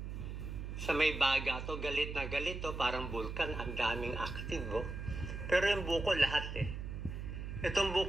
sa may baga to, galit na galit parang vulkan, ang daming active Pero yung bukol lahat Itong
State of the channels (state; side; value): noise; right; hum, 6 dB below the sound